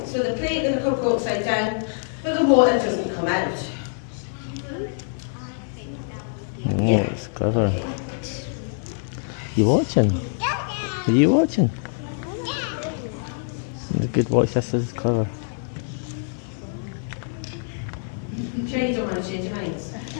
so the plate and the cup go upside down, but the water doesn't come out. Oh, it's clever. You watching? Are you watching? The good watch, this is clever. You sure you don't want to change your minds?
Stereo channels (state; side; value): silent; right; digital silence